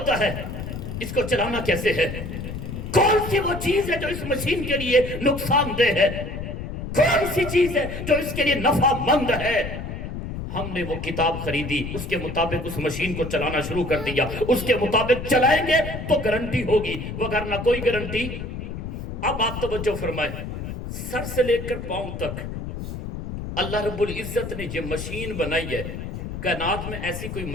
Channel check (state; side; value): noise; left; rumble, 7 dB below the sound